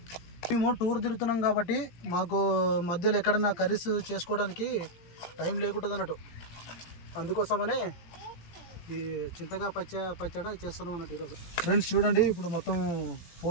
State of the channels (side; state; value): right; late; 17 ms